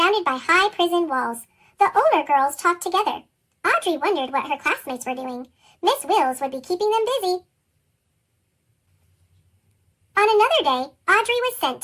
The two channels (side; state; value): both; identical; correlation 1.00